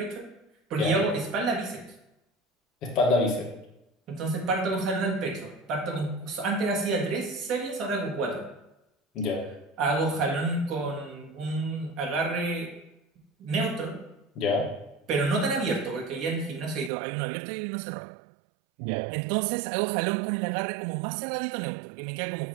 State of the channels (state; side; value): drops out; left; at 16.9 s